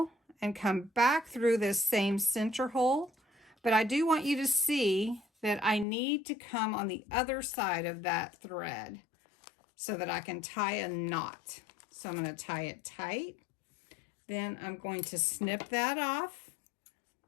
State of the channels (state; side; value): drops out; right; at 5.9 s